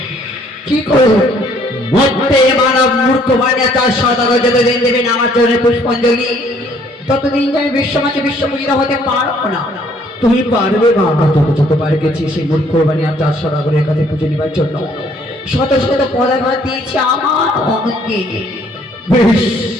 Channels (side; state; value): both; normal; correlation 0.63